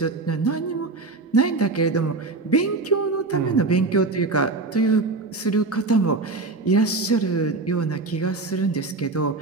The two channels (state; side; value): quieter; left; 3.5 dB